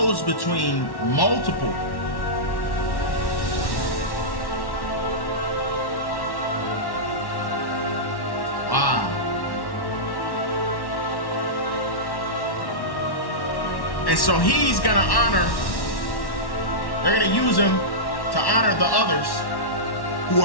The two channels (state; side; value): late; right; 1.1 ms